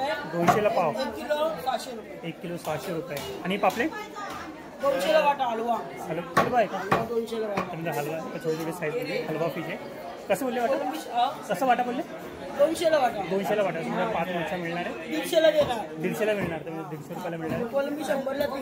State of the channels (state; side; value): identical; both; correlation 1.00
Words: 200ला पाव. 1 किलो 600 रुपये. 1 किलो 600 रुपये. आणि पापलेट? 200ला वाटा हलवा. हलवा आहे का? 200ला वाटा. समजा हलवा छोटी छोटी साईजमध्ये हलवा फिश आहे. कसं बोलले वाटा? कसं वाटा बोलले? 200ला वाटा. 200ला वाटा. समजा 5 माणसं मिळणार आहे. 150ला देणार. 150ला मिळणार. तर 150 रुपयाला मिळणार आहे. कोलंबी 100ला